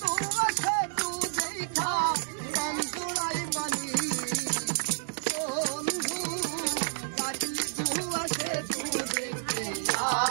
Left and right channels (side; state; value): left; silent; digital silence